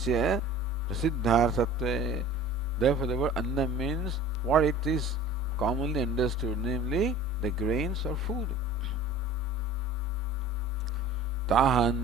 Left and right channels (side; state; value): both; normal; correlation 0.43